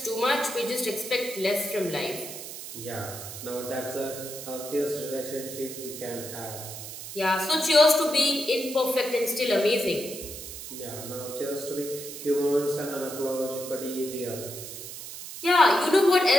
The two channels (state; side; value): noise; right; hiss, 10 dB below the sound